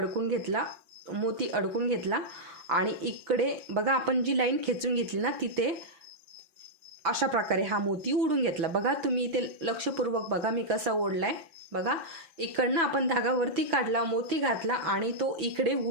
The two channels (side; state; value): left; late; 6.0 ms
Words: घेतला, मोती अडकून घेतला आणि इकडे बघा आपण जी लाईन खेचून घेतली ना तिथे अशा प्रकारे हा मोती ओढून घेतला. बघा तुम्ही इथे लक्षपूर्वक बघा मी कसा ओढलाय. बघा इकडनं आपण धागा वरती काढला, मोती घातला आणि तो इकडे